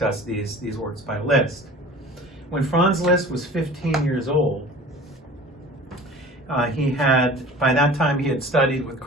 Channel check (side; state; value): both; normal; correlation 0.42